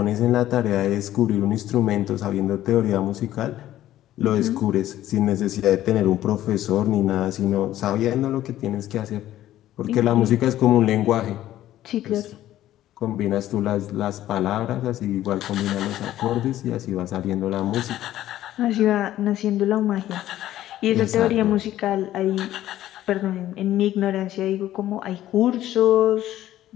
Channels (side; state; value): right; quieter; 13.4 dB